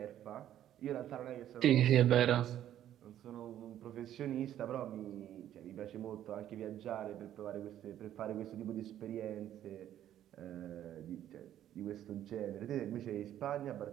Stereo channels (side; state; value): left; quieter; 11.5 dB